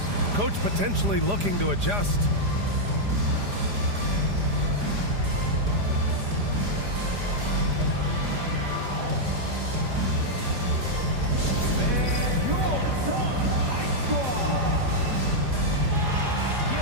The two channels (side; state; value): left; late; 4.9 ms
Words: Coach potentially looking to adjust.